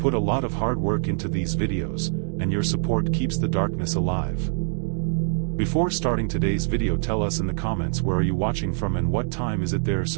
a lot of hard work into these videos, and your support keeps the darkness alive. Before starting today's video, tell us in the comments where are you watching from and what time is it there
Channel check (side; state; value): left; silent; digital silence